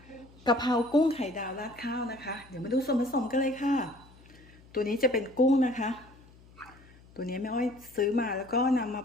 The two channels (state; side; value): noise; left; hum, 24 dB below the sound